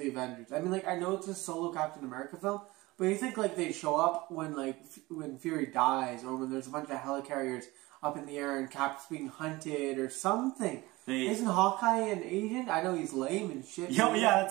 Avengers? I mean, like, I know it's a solo Captain America film, but you think, like, they show up when, like, when Fury dies, or when there's a bunch of helicarriers up in the air and Cap's being hunted, or something. Isn't Hawkeye an agent? I know he's lame and shit. Yo, yeah,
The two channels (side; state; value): left; quieter; 21.0 dB